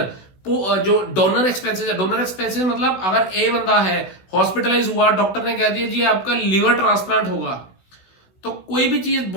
जो डोनर एक्सपेंसेस है, डोनर एक्सपेंसेस मतलब अगर ए बंदा है हॉस्पिटलाइज हुआ, डॉक्टर ने कह दिया जी आपका लीवर ट्रांसप्लांट होगा, तो कोई भी चीज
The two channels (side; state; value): right; late; 16 ms